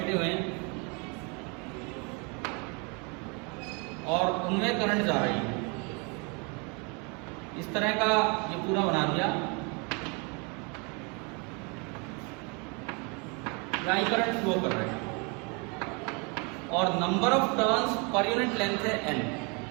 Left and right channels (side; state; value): left; quieter; 32.3 dB